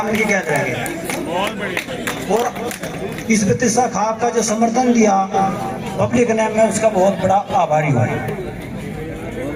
इनकी कहते रहेंगे। और इस बत्तीसा खाप का जो समर्थन दिया पब्लिक ने, मैं उसका बहुत बड़ा आभारी हूँ।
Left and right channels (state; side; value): identical; both; correlation 1.00